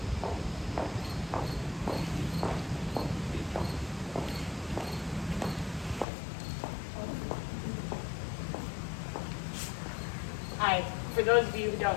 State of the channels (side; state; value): right; drops out; at 6.1 s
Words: Hi, for those of you who